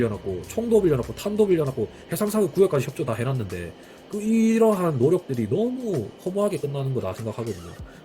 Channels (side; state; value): both; identical; correlation 1.00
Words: 총도 빌려놨고 탄도 빌려놨고 해상사격 구역까지 협조 다 해놨는데 이러한 노력들이 너무 허무하게 끝나는 거다 생각하거든요.